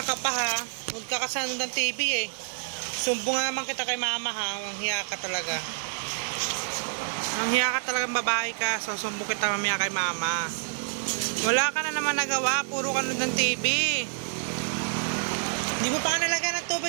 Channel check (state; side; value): silent; left; digital silence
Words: ka pa ha. Huwag ka kasano ng TV eh. Sumbong naman kita kay mama ha. Ang hiya ka talaga. Ang hiya ka talagang babae ka. So sumbong kita mamaya kay mama. Wala ka na naman nagawa. Puro ka ng TV. Hindi mo pa ka nalagyan ng